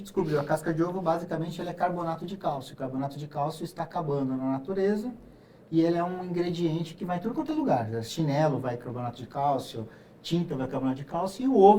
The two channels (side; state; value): both; identical; correlation 1.00